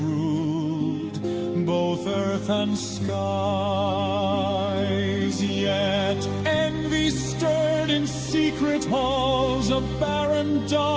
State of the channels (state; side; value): identical; both; correlation 1.00